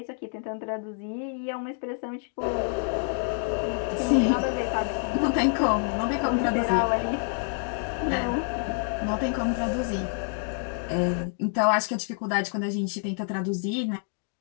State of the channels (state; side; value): silent; right; 60 dB below the other